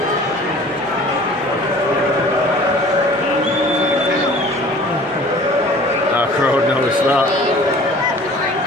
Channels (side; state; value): both; normal; correlation 0.47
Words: Crowd noticed that.